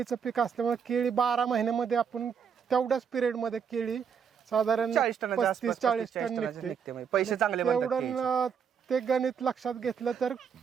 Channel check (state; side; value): quieter; left; 7.1 dB